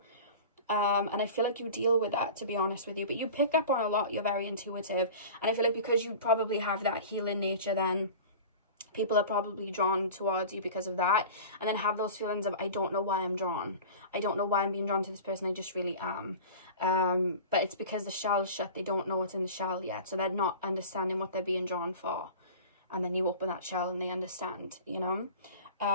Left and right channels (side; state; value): both; inverted; correlation -0.37